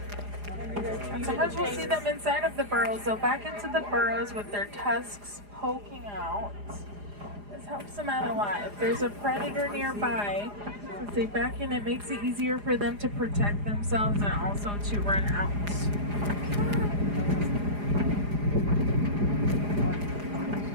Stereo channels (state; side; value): late; left; 4.9 ms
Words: And sometimes we'll see them inside of the burrows. So back into the burrows with their tusks poking out. This helps them out a lot. If there's a predator nearby, since they back in, it makes it easier for them to protect themselves and also to run out.